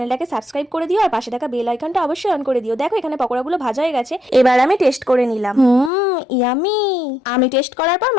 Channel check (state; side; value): drops out; right; at 5.9 s